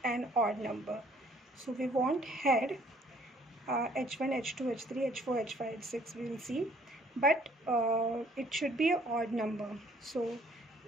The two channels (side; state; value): both; normal; correlation 0.60